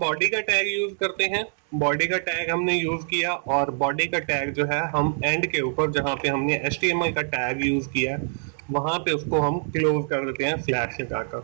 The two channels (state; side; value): silent; left; digital silence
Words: का टैग यूज करते हैं। बॉडी का टैग हमने यूज किया, और बॉडी का टैग जो है हम एंड के ऊपर जहां पे हमने HTML का टैग यूज किया वहां पे उसको हम क्लोज कर देते हैं स्लैश लगाकर।